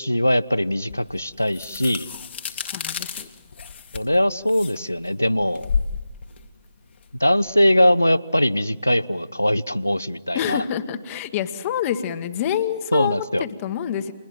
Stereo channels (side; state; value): both; inverted; correlation -0.90